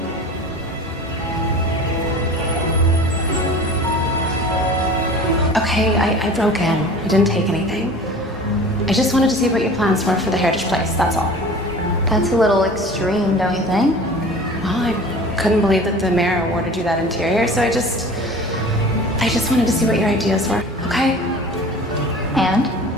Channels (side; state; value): both; normal; correlation 0.40